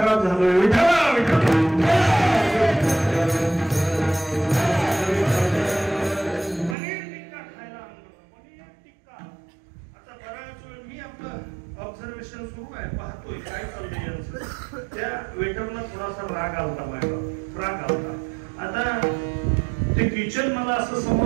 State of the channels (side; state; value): left; drops out; at 6.8 s